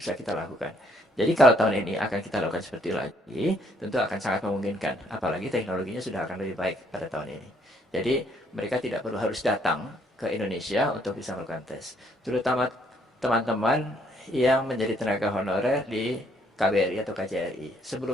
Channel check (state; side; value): normal; both; correlation 0.68